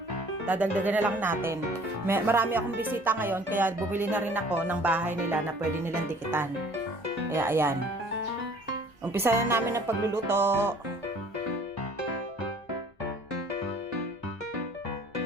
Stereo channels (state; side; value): normal; both; correlation 0.53